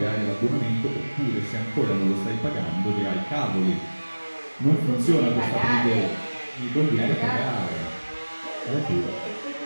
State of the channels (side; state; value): both; inverted; correlation -1.00